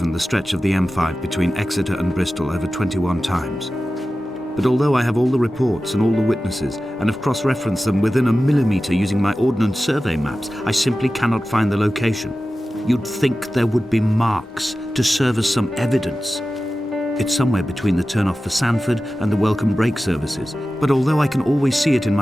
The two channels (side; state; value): both; normal; correlation 0.95